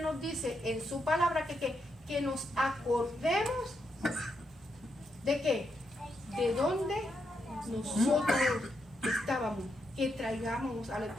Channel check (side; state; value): both; normal; correlation 0.81